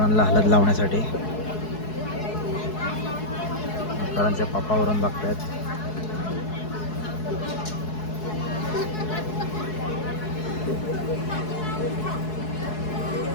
हळद लावण्यासाठी. करणच्या पप्पावरून बघतायत.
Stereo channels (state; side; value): late; right; 4.7 ms